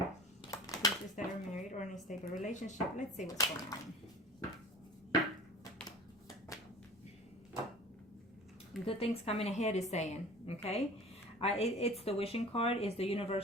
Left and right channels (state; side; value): normal; both; correlation 0.40